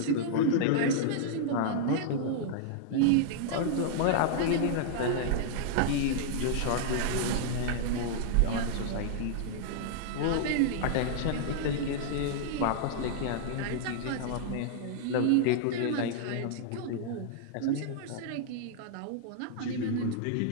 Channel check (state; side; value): different; both; correlation -0.01